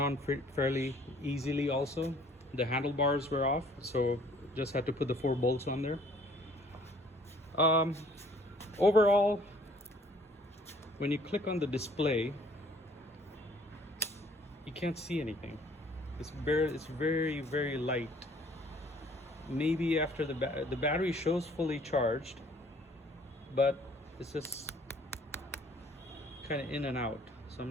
on fairly easily also. The handlebars were off, so just had to put the 4 bolts on there. Overall, when you click on the display, you can't see anything. It's very, very light. Maybe after the battery shows fully charged, but it's just kind of in and out, so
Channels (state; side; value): normal; both; correlation 0.57